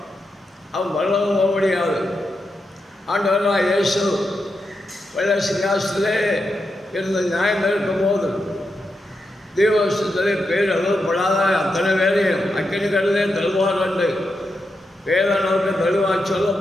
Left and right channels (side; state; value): both; normal; correlation 0.86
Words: அவன் வரவும் போக முடியாது. ஆண்டவராக இயேசு வெள்ள சிங்காசனத்திலே இருந்து நியாயம் இருக்கும்போது தேவசத்திலே பேர் எழுதப்படாத அத்தனை வேலையும் அக்கினி கடலே தருவார் என்று வேதனுக்கு தெளிவாக